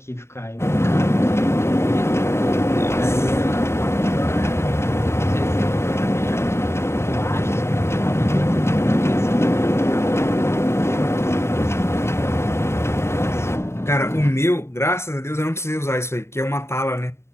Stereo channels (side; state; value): right; late; 0.13 ms